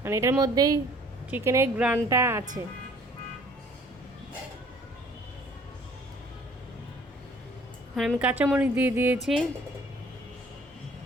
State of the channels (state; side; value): normal; both; correlation 0.55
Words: এটার মধ্যেই চিকেনের গ্রানটা আছে। এখন আমি কাঁচামরিচ দিয়ে দিয়েছি।